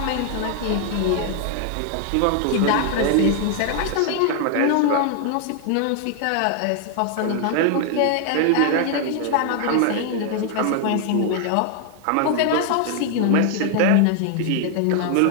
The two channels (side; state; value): both; different; correlation 0.00